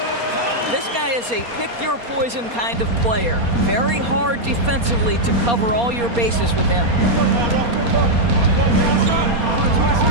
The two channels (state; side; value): late; left; 4.2 ms